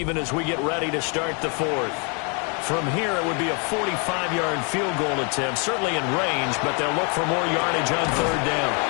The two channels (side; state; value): right; quieter; 35.3 dB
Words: as we get ready to start the 4th. From here, it would be a 45-yard field goal attempt, certainly in range, but they'll look for more yardage on 3rd down.